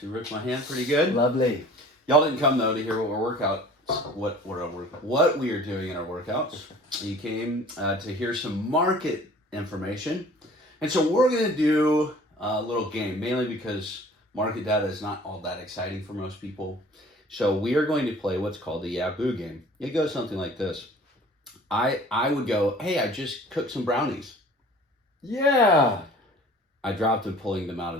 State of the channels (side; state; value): both; normal; correlation 0.48